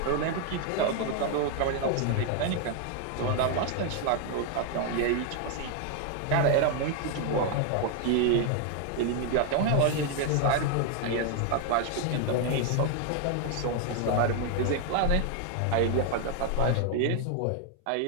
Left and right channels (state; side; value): different; both; correlation 0.00